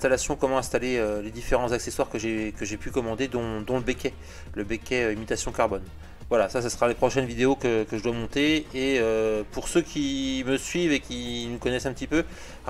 comment installer les différents accessoires que j'ai pu commander, dont le becquet imitation carbone. Voilà, ça sera les prochaines vidéos que je dois monter. Et pour ceux qui me suivent et qui nous connaissent un petit peu,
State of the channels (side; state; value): both; identical; correlation 1.00